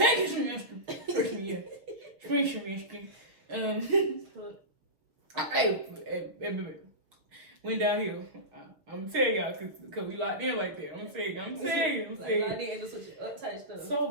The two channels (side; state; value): left; late; 6.3 ms